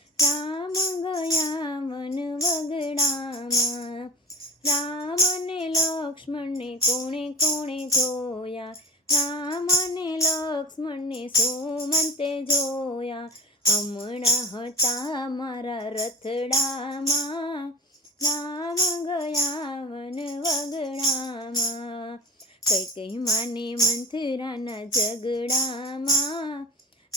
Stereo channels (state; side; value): normal; both; correlation 0.33